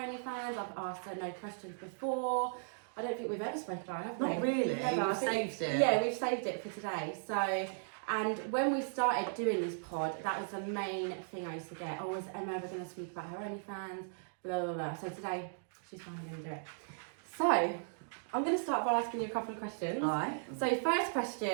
I've asked her no questions before. I don't think we've ever spoken about it, have we? Not really. Never. We've saved it. Yeah, we've saved it for today. So, and when we started doing this pod, that was the main thing I used to get. Oh, is Emma ever going to speak about her OnlyFans? Blah, blah, blah. So today, she's finally going to do it. So, I'm going to start by asking you a couple of questions. All right. So, first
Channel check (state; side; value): silent; left; digital silence